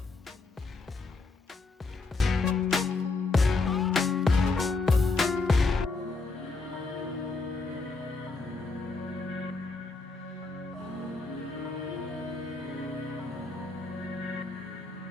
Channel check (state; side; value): quieter; right; 3.8 dB